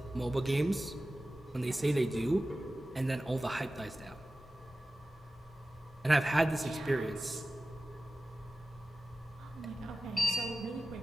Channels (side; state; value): both; normal; correlation 0.95